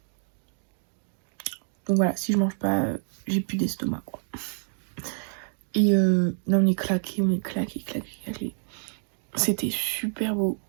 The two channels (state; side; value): silent; left; 60 dB below the other